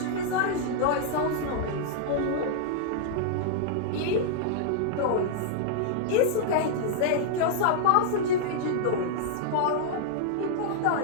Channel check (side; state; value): both; different; correlation -0.01